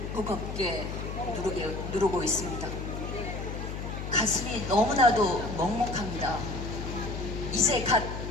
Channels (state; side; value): noise; left; hum, 6 dB below the sound